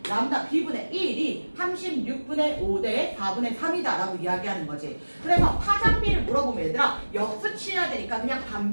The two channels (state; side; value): inverted; both; correlation -1.00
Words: 람다 B분의 1이 36분의 5 대 4분의 3이다 라고 이야기하는 거지. 그래서 파장 B를 물어보면 얘들아 역수 취해야 되니까 그냥